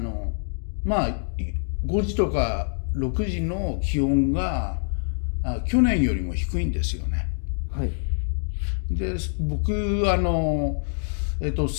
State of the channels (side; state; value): right; silent; digital silence